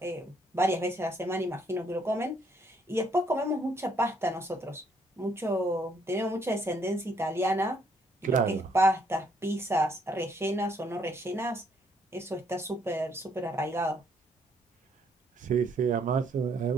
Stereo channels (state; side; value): normal; both; correlation 0.69